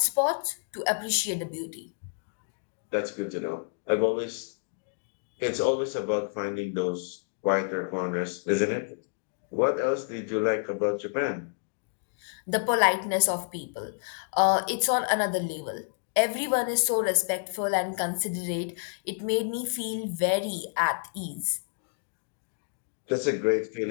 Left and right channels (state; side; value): silent; right; digital silence